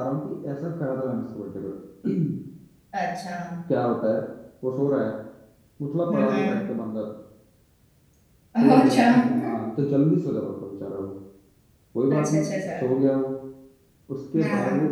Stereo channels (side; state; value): both; identical; correlation 1.00